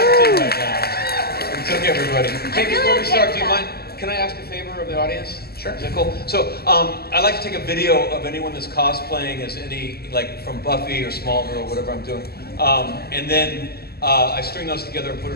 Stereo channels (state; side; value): late; right; 0.46 ms